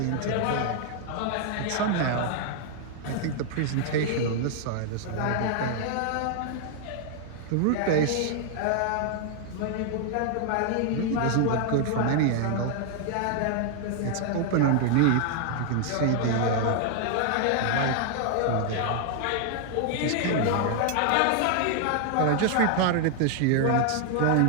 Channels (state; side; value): different; both; correlation 0.00